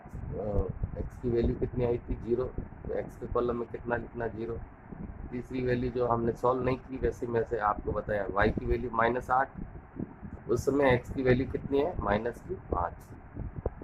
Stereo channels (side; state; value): both; identical; correlation 1.00